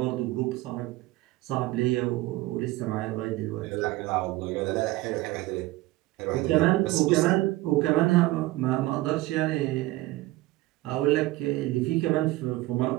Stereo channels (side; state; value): left; quieter; 18.4 dB